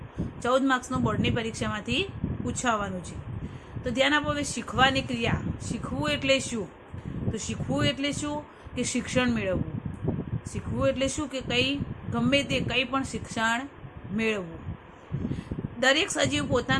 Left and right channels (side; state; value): both; identical; correlation 1.00